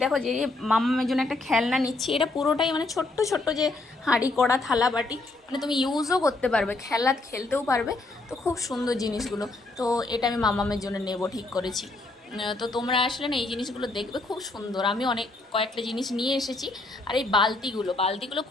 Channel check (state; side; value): quieter; right; 3.1 dB